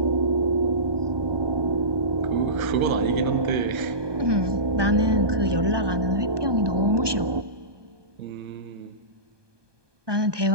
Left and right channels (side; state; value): left; late; 1.2 ms